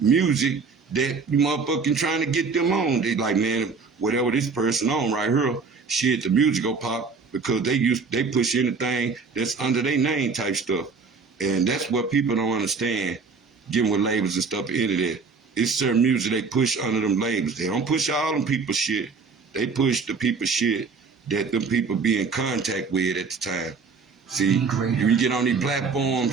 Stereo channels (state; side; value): quieter; left; 4.8 dB